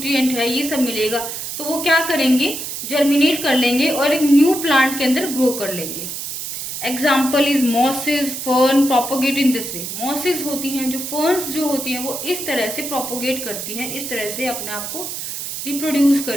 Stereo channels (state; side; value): noise; right; hiss, 6 dB below the sound